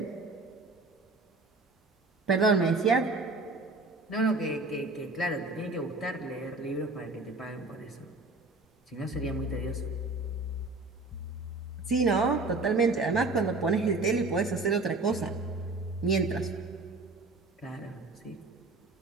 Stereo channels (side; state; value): left; quieter; 3.3 dB